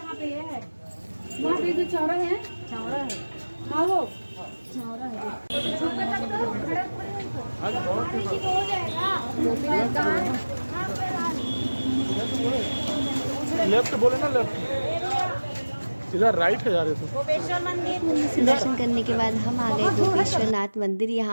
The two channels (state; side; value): inverted; both; correlation -1.00